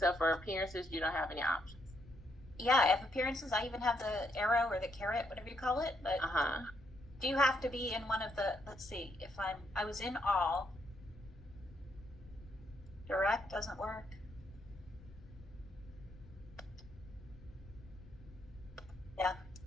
for appearances. You don't have any options. Yeah, I have appearances. I even have the arrow or the carrot, whatever you call it. But do you have to be in one of the, let's see, if I was in all. Direct doesn't work. Yeah.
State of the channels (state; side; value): noise; left; rumble, 19 dB below the sound